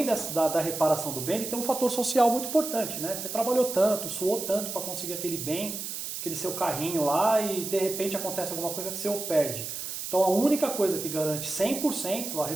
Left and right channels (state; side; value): noise; right; hiss, 6 dB below the sound